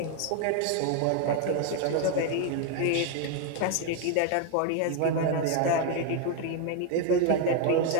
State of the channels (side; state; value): both; different; correlation 0.01